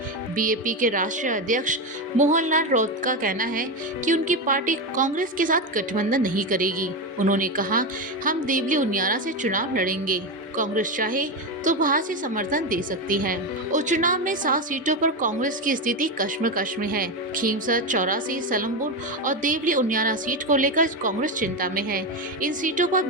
बीएपी के राष्ट्रीय अध्यक्ष मोहनलाल राउत का कहना है कि उनकी पार्टी कांग्रेस के साथ गठबंधन नहीं करेगी। उन्होंने कहा, हम देवली उनियारा से चुनाव लड़ेंगे। कांग्रेस चाहे तो बाहर से समर्थन दे सकती है। उपचुनाव में 7 सीटों पर कांग्रेस की स्थिति कश्मकश में है। खींवसर, 84, सलमपुर और देवली उनियारा सीट को लेकर कांग्रेस चिंता में है। इन सीटों पर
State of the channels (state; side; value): normal; both; correlation 0.13